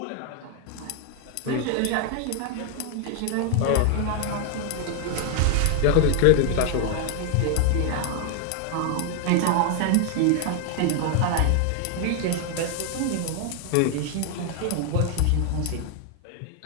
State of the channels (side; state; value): both; different; correlation 0.00